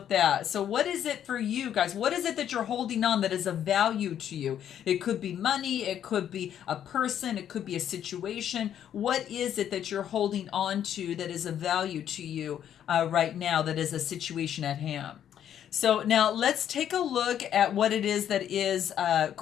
that. So what is it for you guys? What is it that you're holding on that is of value to you? It could be money, it could be a person, it could be a situation. What is it that you're holding on to that is of value to you right now, that is a situation at hand? So now let's take a look at what it is that is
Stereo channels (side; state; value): right; quieter; 9.9 dB